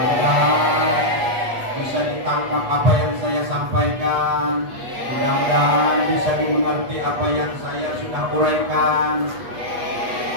bisa ditangkap apa yang saya sampaikan, mudah-mudahan bisa dimengerti apa yang saya sudah uraikan,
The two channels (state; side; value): late; left; 8.3 ms